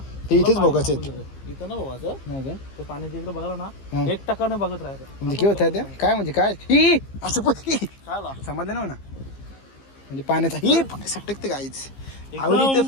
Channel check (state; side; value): late; right; 15 ms